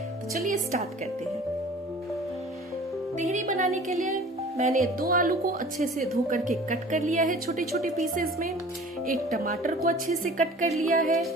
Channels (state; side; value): normal; both; correlation 0.45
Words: तो चलिए स्टार्ट करते हैं। तेहरी बनाने के लिए मैंने 2 आलू को अच्छे से धो करके कट कर लिया है छोटे छोटे पीसेस में। 1 टमाटर को अच्छे से कट कर लिया है।